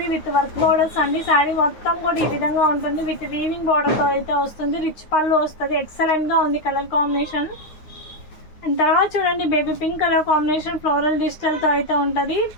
విత్ వర్క్ బోర్డర్స్ అండి. శారీ మొత్తం కూడా ఈ విధంగా ఉంటుంది, విత్ వీవింగ్ బోర్డర్తో అయితే వస్తుంది. రిచ్ పళ్ళు వస్తుంది, ఎక్సలెంట్గా ఉంది కలర్ కాంబినేషన్. అండ్ తర్వాత చూడండి baby pink colour combination floral డిజిటల్తో అయితే ఉంటుంది.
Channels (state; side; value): late; right; 9.3 ms